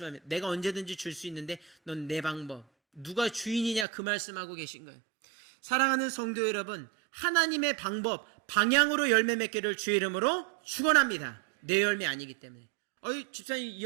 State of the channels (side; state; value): left; drops out; at 3.9 s